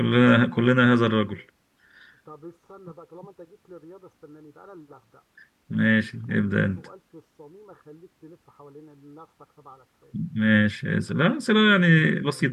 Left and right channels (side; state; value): both; identical; correlation 1.00